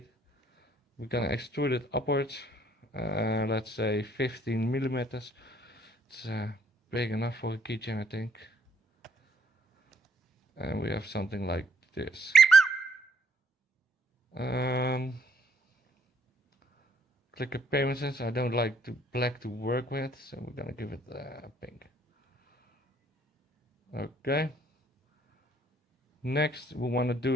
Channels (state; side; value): normal; both; correlation 0.66